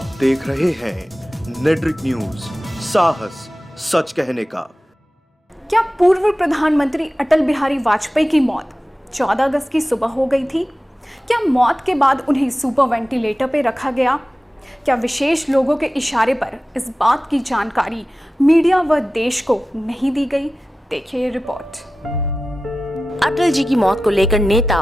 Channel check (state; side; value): normal; both; correlation 0.95